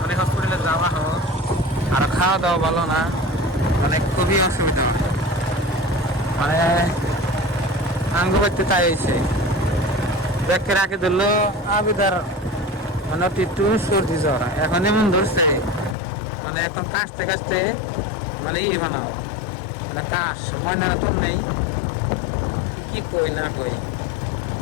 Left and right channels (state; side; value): drops out; right; at 16.0 s